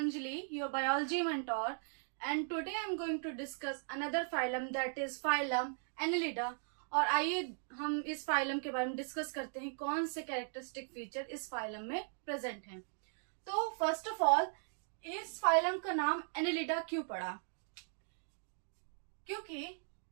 your biology mentor, and today I'm going to discuss another phylum that is phylum Annelida। और आइए हम इस phylum के बारे में डिस्कस करते हैं कौन से कैरेक्टरिस्टिक फीचर इस फाइलम में प्रेजेंट हैं। तो फर्स्ट ऑफ ऑल इस फाइलम का नाम एनेलिडा क्यों पड़ा? क्योंकि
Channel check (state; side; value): silent; left; digital silence